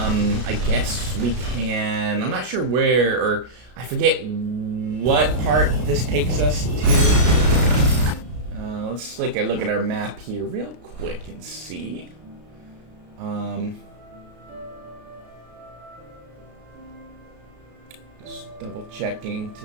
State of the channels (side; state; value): left; late; 33 ms